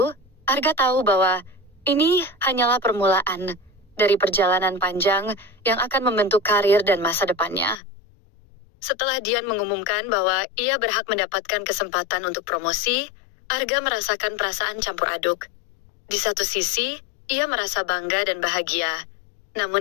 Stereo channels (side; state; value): right; drops out; at 7.8 s